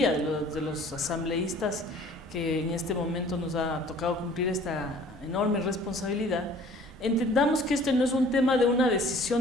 de los asambleístas que en este momento nos ha tocado cumplir esta enorme responsabilidad, entendamos que este no es un tema de una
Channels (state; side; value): normal; both; correlation 0.52